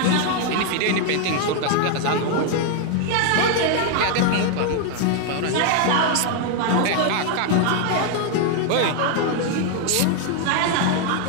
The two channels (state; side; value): different; both; correlation 0.00